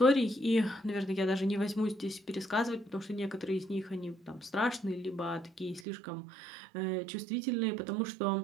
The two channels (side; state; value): left; drops out; at 5.9 s